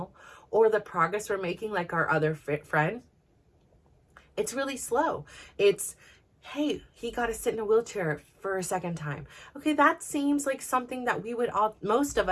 or the progress we're making, like our other friend, it's really slow. It's, hey, he got to sit in a wheelchair for a second time. Okay, that seems like something that most of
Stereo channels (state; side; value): identical; both; correlation 1.00